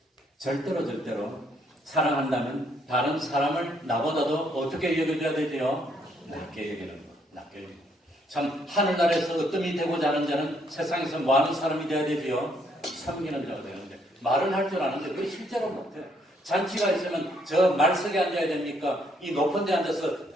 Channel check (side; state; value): both; normal; correlation 0.70